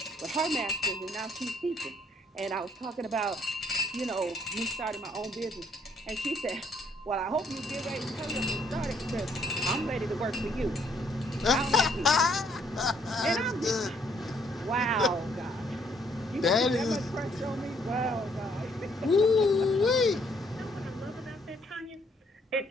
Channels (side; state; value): both; normal; correlation 0.67